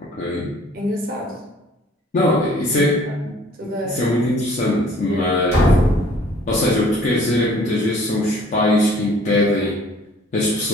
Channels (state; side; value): normal; both; correlation 0.55